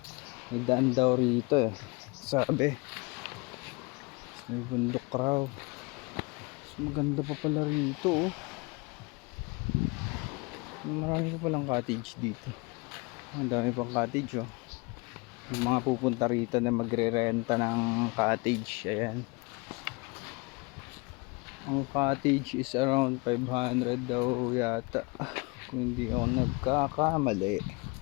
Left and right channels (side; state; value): right; quieter; 28.1 dB